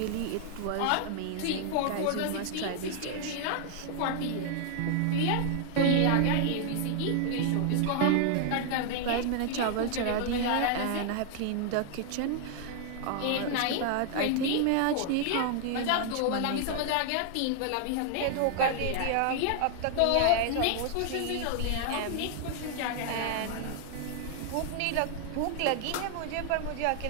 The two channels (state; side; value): different; both; correlation 0.00